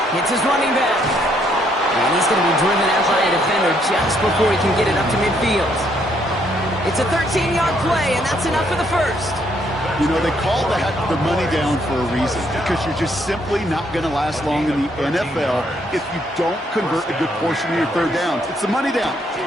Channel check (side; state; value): both; normal; correlation 0.71